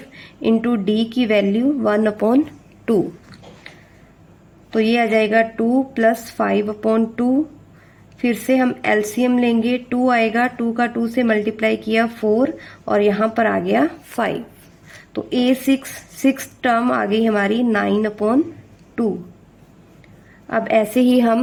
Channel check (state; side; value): identical; both; correlation 1.00